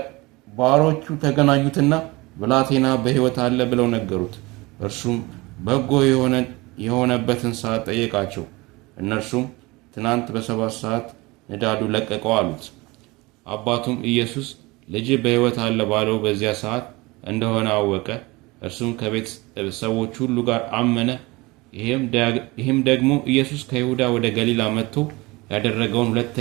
ባሮቹ ተገናኙትና ብላቴና በሕይወት አለ ብለው ነገሩት። እርሱም በጎ የሆነበትን ሰዓት ጠየቃቸው። እነርሱም ትናንት በ7 ሰዓት ንዳዱ ለቀቀው አሉት። አባቱም ኢየሱስ ልጅ በሕይወት አለ ባለው በዚያ ሰዓት እንደሆነ አወቀ። እርሱም ከቤት ሰዎች ሁሉ ጋር አመነ። ይህም ደግሞ ኢየሱስ ከይሁዳ ወደ ገሊላ መጥቶ ያደረገውን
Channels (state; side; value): quieter; left; 23.1 dB